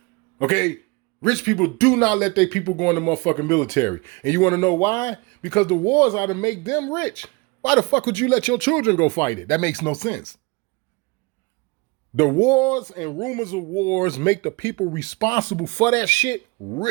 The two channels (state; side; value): quieter; left; 26.6 dB